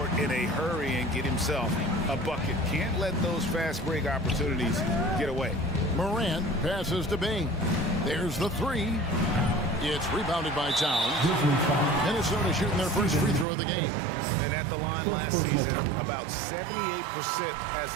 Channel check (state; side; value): drops out; left; at 13.5 s